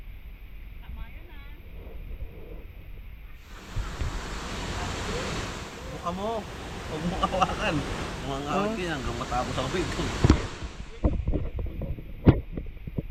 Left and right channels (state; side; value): identical; both; correlation 1.00